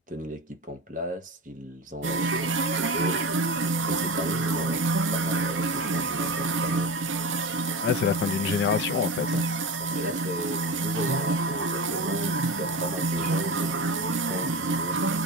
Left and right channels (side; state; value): both; normal; correlation 0.25